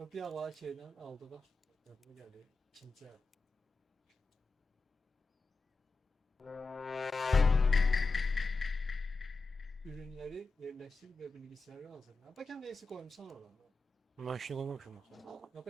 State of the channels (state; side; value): quieter; right; 3.6 dB